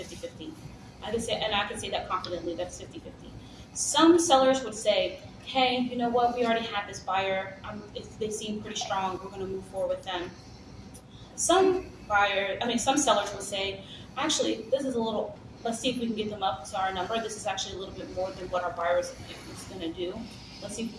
I can say that confidently, that's 50-50. Some sellers would say, hey, you know what, we already have this buyer. They seem pretty strong. We're going to move forward with them. Some sellers will say, actually, this is a little, let's see if we can get them up to our number. This is actually a little bit more than what our buyer is going to do. Let's see if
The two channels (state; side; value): identical; both; correlation 1.00